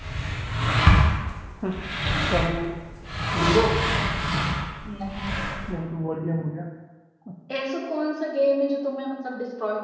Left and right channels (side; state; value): both; identical; correlation 1.00